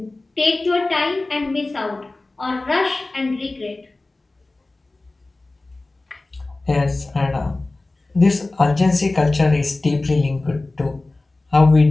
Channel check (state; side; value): quieter; right; 3.1 dB